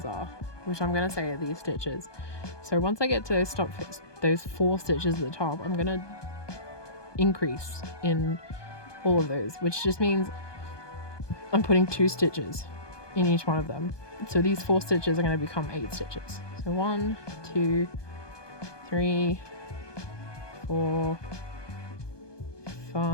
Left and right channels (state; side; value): late; right; 1.2 ms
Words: are, which I'm going to say are these stitches. So once I get to those 4 stitches at the top, I'm going to increase in all of those, which just means I'm putting 2 stitches in each one of them. So these 4 stitches are going to become 8 stitches. So 1, 2, 3, 4,